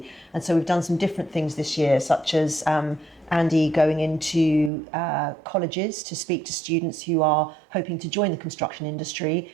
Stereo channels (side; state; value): left; drops out; at 4.7 s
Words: And so we've done some different things this year, such as Andy going into colleges to speak to students who are hoping to join the construction industry